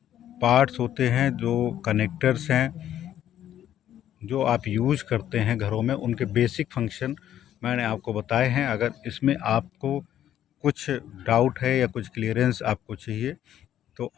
पार्ट्स होते हैं, जो कनेक्टर्स हैं, जो आप यूज़ करते हैं घरों में, उनके बेसिक फंक्शन मैंने आपको बताए हैं। अगर इसमें आपको कुछ डाउट है या कुछ क्लियरेंस आपको चाहिए तो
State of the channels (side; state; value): right; quieter; 11.3 dB